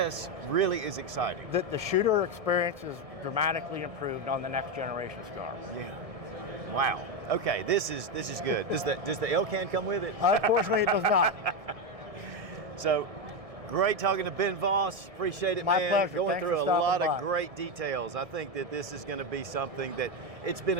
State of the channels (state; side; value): late; left; 1.6 ms